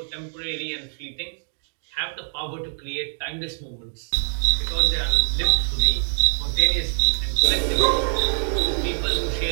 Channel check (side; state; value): left; silent; 63 dB below the other